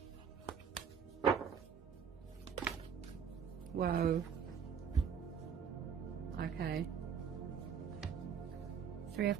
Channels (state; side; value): quieter; left; 7.1 dB